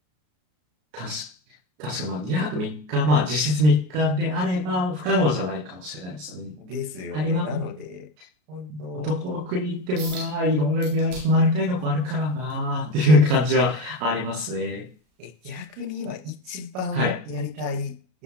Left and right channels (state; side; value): late; left; 33 ms